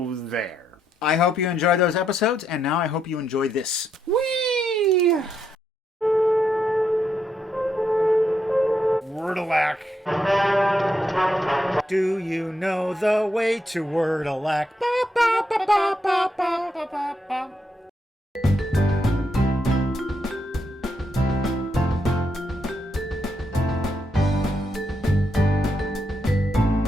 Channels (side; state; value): both; normal; correlation 0.79